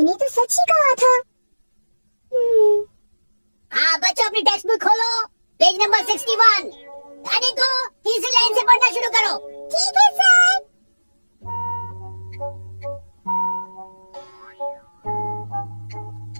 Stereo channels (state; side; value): inverted; both; correlation -1.00